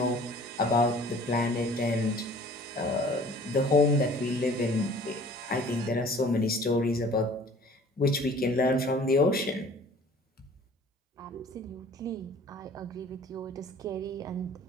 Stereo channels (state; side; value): normal; both; correlation 0.49